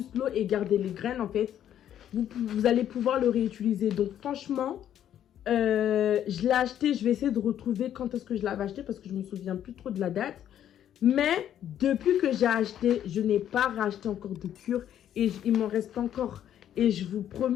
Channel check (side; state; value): right; quieter; 10.6 dB